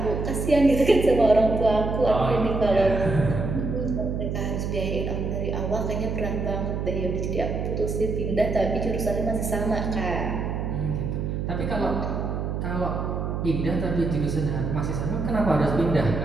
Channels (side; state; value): right; noise; hum, 2 dB below the sound